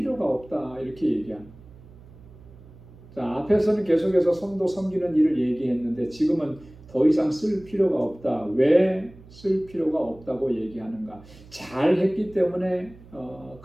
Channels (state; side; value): noise; right; hum, 21 dB below the sound